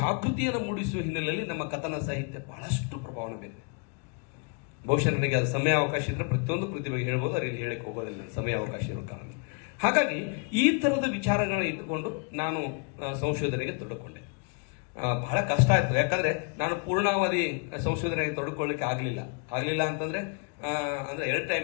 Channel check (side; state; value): right; quieter; 35.2 dB